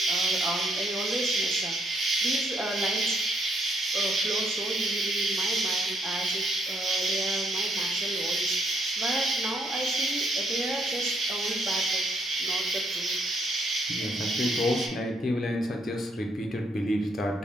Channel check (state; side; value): normal; both; correlation 0.72